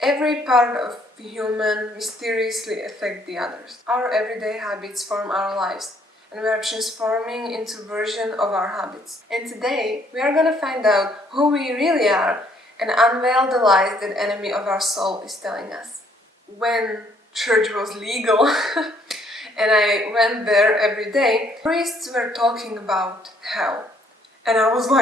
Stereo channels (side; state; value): both; normal; correlation 0.66